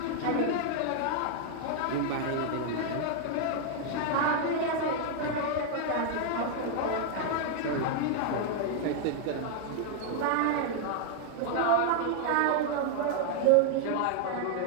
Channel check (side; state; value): both; different; correlation 0.00